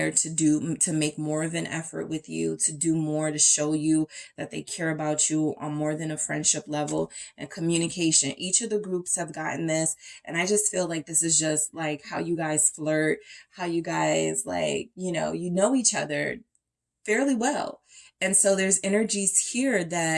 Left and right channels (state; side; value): identical; both; correlation 1.00